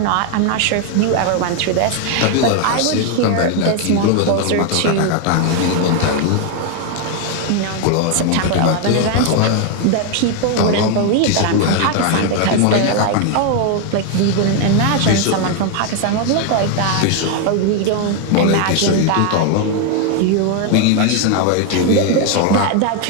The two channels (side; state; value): both; different; correlation 0.01